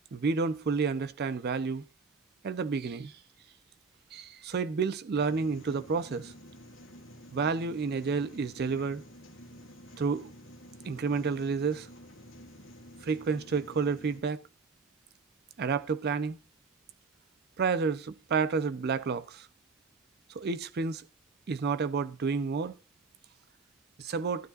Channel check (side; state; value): left; quieter; 4.6 dB